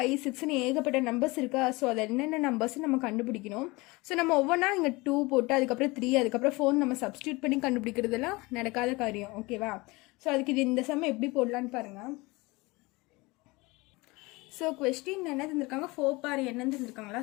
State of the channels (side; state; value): right; quieter; 23.6 dB